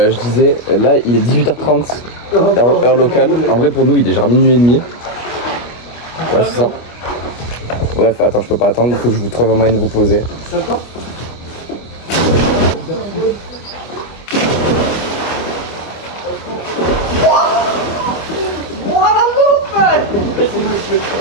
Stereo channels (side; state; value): right; late; 25 ms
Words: disais, là il est 18h30, heure locale. En vrai pour nous il est genre minuit et demi. Ouais c'est ça. Bref, attends, je peux pas attendre, il faut que je vous trouve un moyen de vous poser.